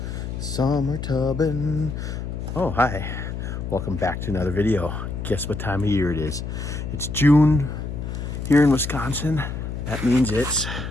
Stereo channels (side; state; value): left; noise; hum, 6 dB below the sound